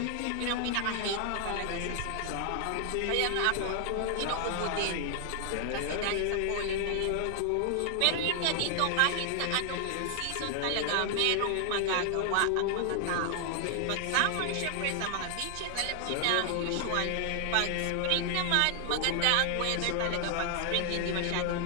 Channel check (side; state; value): both; different; correlation 0.00